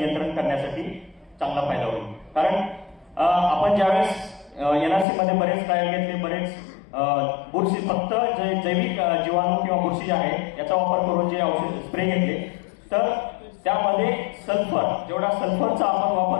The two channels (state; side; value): drops out; right; at 5.1 s